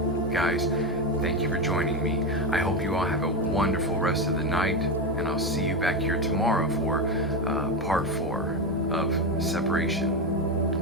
Guys, thank you for joining me. I hope you all have a wonderful rest of the night, and I'll see you back here tomorrow for part 4 of Separation.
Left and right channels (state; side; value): normal; both; correlation 0.14